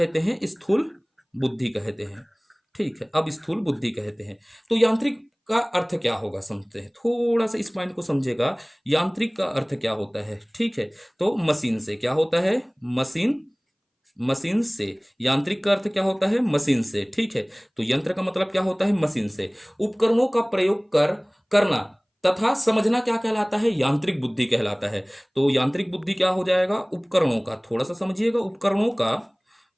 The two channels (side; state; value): both; identical; correlation 1.00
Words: हैं? स्थूल बुद्धि कहते हैं। ठीक है, अब स्थूल बुद्धि कहते हैं। तो यांत्रिक का अर्थ क्या होगा समझते हैं, थोड़ा सा इस पॉइंट को समझेगा। यांत्रिक का अर्थ क्या होता है? ठीक है, तो मशीन से। क्या होता है? मशीन, मशीन से। यांत्रिक का अर्थ क्या होता है? मशीन से। ठीक है, तो यंत्र का मतलब क्या होता है? मशीन से। उपकरणों का प्रयोग करना तथा समझना क्या कहलाता है? यांत्रिक बुद्धि कहलाता है। तो यांत्रिक बुद्धि क्या हो जाएगा? उपकरणों का, थोड़ा सा समझिएगा, उपकरणों का